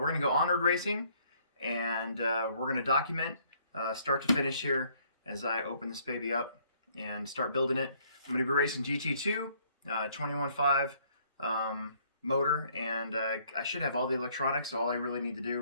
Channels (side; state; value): both; inverted; correlation -0.64